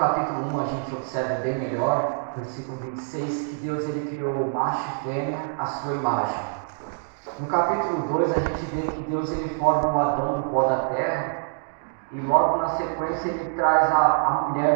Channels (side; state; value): left; silent; 61 dB below the other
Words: 1 a gente observa bem melhor, versículo 26, que Deus ele criou macho e fêmea à sua imagem. No capítulo 2 a gente vê que Deus ele forma o Adão do pó da terra e logo na sequência ele traz a